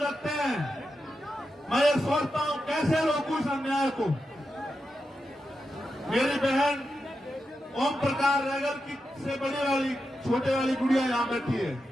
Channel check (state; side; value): normal; both; correlation 0.88